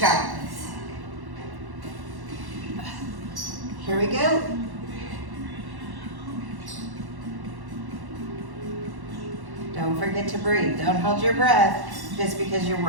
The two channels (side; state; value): left; late; 1.1 ms